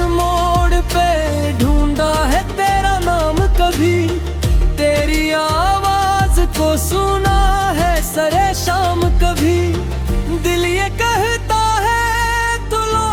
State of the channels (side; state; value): both; identical; correlation 1.00